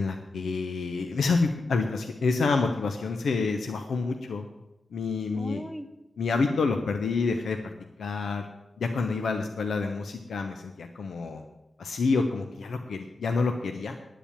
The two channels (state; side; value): quieter; right; 3.8 dB